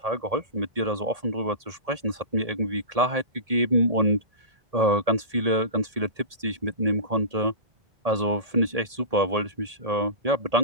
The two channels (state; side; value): late; left; 1.8 ms